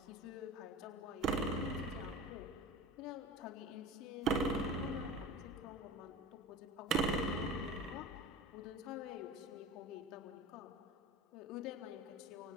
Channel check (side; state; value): both; normal; correlation 0.33